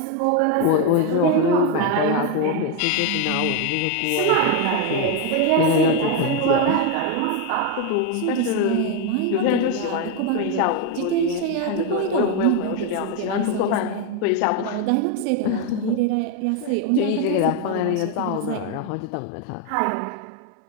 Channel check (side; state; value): both; different; correlation 0.02